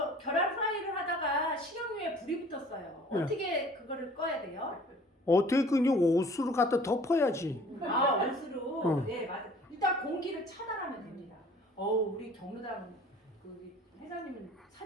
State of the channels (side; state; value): both; normal; correlation 0.50